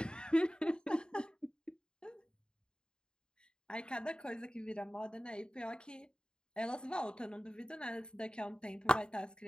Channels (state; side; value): late; right; 0.049 ms